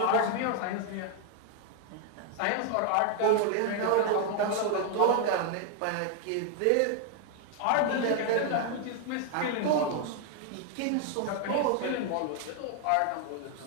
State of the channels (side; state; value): both; different; correlation 0.01